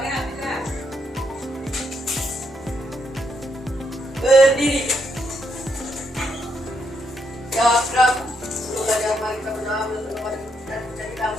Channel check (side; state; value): both; normal; correlation 0.77